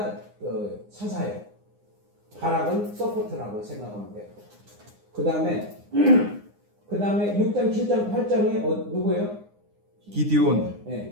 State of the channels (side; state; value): left; late; 9.7 ms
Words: 사사예요. 바락은 서포트라고 생각하면 돼요. 그 다음에 6장, 7장, 8장에 누구예요? 기디온,